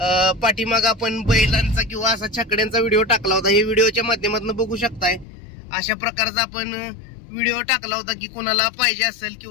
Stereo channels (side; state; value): right; drops out; at 5.2 s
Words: पाठीमाग आपण बैलांचा किंवा असा छकड्यांचा व्हिडिओ टाकला होता. हे व्हिडिओच्या माध्यमातून बघू शकताय. अशा प्रकारचा आपण व्हिडिओ टाकला होता की कोणाला पाहिजे असेल